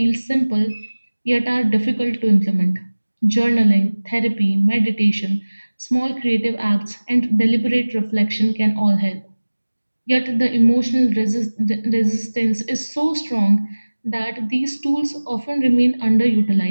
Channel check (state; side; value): inverted; both; correlation -1.00